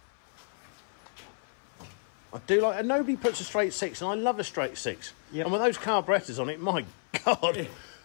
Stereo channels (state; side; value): silent; right; 57 dB below the other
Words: I do like, and nobody puts a straight 6, and I love a straight 6. Yep. And with those carburettors on it, my God. They